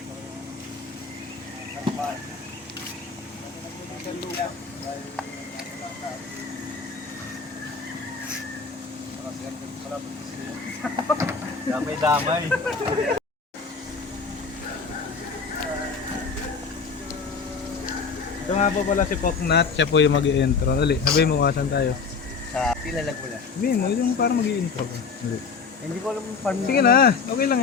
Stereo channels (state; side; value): quieter; right; 5.2 dB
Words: damay-damay. Ito nga po pala si Poknat, siya po yung mag-i-intro. Dali, sabihin mo kasan tayo. Sa Pilalag mo na. Sabihin mo, yung parang mag-i-intro. Hindi ko alam yung farm. Sige na, okay lang